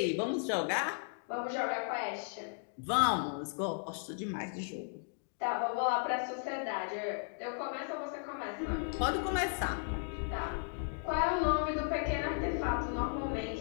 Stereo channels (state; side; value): silent; right; 54 dB below the other